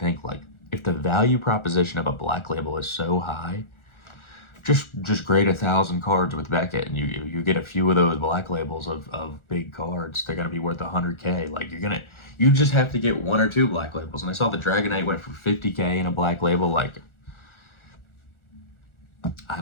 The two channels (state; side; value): late; right; 1.4 ms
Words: like, if the value proposition of a black label is so high, just grade 1,000 cards with Beckett, and you get a few of those black labels of big cards. They're gonna be worth 100K. Like you just have to get 1 or 2 black labels. And I saw the Dragonite went for 50K in a black label. Like, I